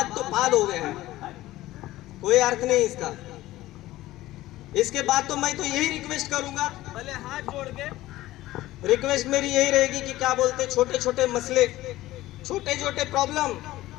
तो बाद हो गया है, कोई अर्थ नहीं इसका। इसके बाद तो मैं तो यही रिक्वेस्ट करूंगा, भले हाथ जोड़ के रिक्वेस्ट मेरी यही रहेगी कि क्या बोलते, छोटे छोटे मसले, छोटे छोटे प्रॉब्लम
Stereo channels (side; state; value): right; quieter; 16.4 dB